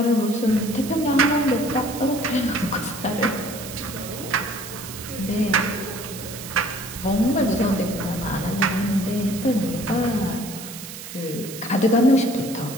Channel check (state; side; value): noise; right; hiss, 11 dB below the sound